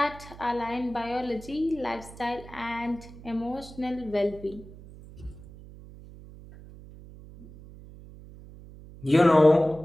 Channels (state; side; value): noise; right; hum, 18 dB below the sound